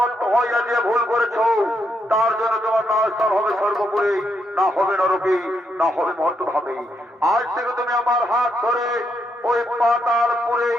ভক্ত হইয়া যে ভুল করেছ তার জন্য তোমার নাস্তার হবে সর্বপুরে, না হবে নরকে, না হবে মর্তভাবে। আজ থেকে তুমি আমার হাত ধরে ওই পাতালপুরেই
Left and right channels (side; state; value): both; normal; correlation 0.79